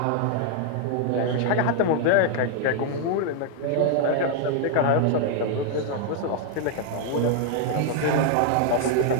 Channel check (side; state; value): both; different; correlation 0.00